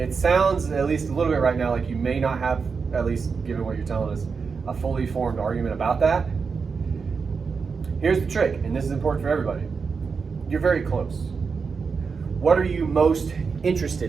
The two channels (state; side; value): quieter; left; 5.3 dB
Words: sounds, at least a little bit right now, like you may not have, at least given what you're telling us, a fully formed argument about that. Here's the trick, and this is important for everybody. You're very close. What are you most